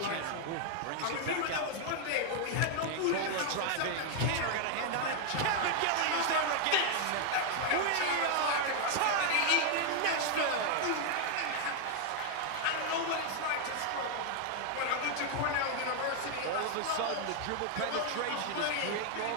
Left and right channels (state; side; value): different; both; correlation 0.00